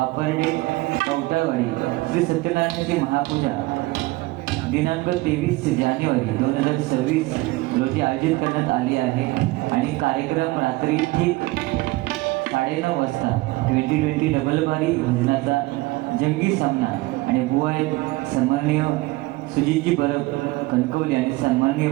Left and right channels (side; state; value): left; quieter; 21.0 dB